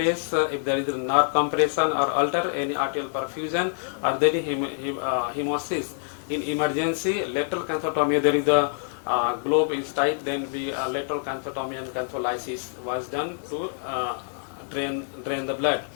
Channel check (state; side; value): silent; right; 61 dB below the other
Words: if there is a nerve compression or alter any arterial perfusion or there is hemosis. In emergency, lateral canthotomy, there is the globe is tight, then we lateral canthotomy and cantholysis was done to drain the blood.